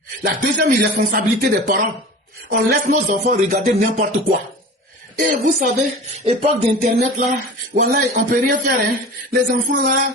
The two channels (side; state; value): both; normal; correlation 0.36